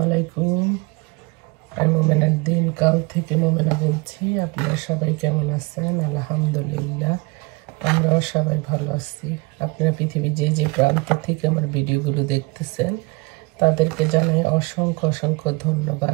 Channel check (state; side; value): quieter; left; 26.7 dB